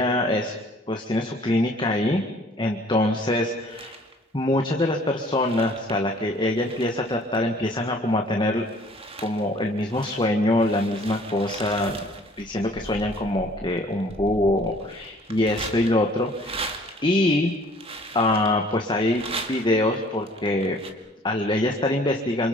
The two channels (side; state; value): both; normal; correlation 0.55